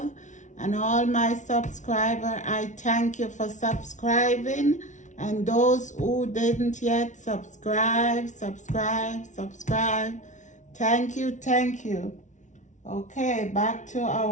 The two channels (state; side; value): late; right; 0.36 ms